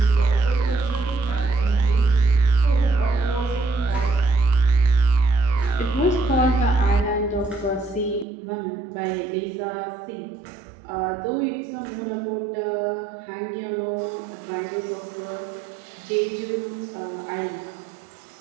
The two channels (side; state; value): left; drops out; at 8.2 s